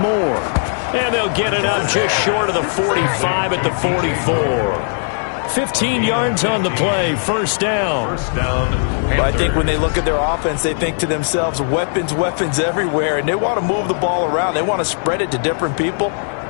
And they'll get it up just short of the 45 at the 44. 15 yards on the play, first down. But I think when they look at their offense, they think to themselves, weapons, weapons everywhere, and they want to move the ball around. They want to spread it to different people,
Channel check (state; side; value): silent; right; digital silence